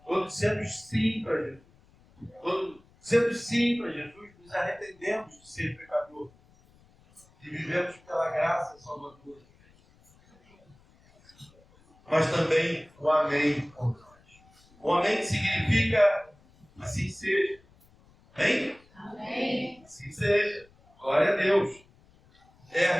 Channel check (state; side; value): noise; left; rumble, 30 dB below the sound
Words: Quando dissemos sim para Jesus, quando dissemos sim para Jesus, nos arrependemos de ser pecador e vivemos pela graça salvadora. Mas também o amém por nós. O amém significa assim seja. Amém? Amém. Assim seja. Glória a Deus. É a